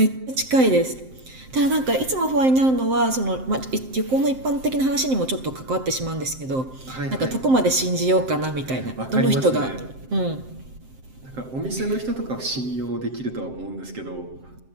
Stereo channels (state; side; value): late; left; 7.7 ms